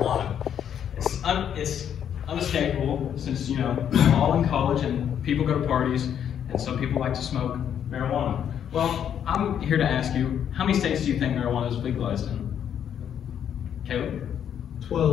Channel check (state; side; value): quieter; right; 9.0 dB